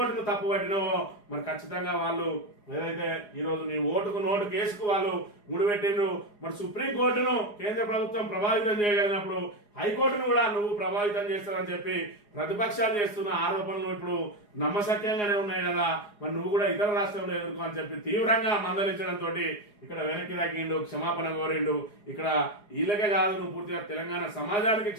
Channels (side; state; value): right; late; 4.8 ms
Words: తప్పు పట్టినావో మరి ఖచ్చితంగా వాళ్ళు ఏదైతే ఈరోజు నీ ఓటుకు నోటు కేసుకు వాళ్ళు ముడిపెట్టిండ్రు. మరి సుప్రీంకోర్టును కేంద్ర ప్రభుత్వం ప్రభావితం చేయగలిగినప్పుడు హైకోర్టును కూడా నువ్వు ప్రభావితం చేస్తావని చెప్పి ప్రతిపక్షాలు చేస్తున్న ఆరోపణలు ఇప్పుడు నమ్మశక్యంగానే ఉన్నాయి కదా. మరి నువ్వు కూడా ఇతర రాష్ట్రంలో ఎదుర్కో అని చెప్పి తీవ్రంగా మందలించడంతో ఇక్కడ వెనక్కి తగ్గిండు, క్షమాపణ కోరిండు. ఇక్కడ వీళ్ళకే కాదు, నువ్వు పూర్తిగా తెలంగాణ సమాజానికి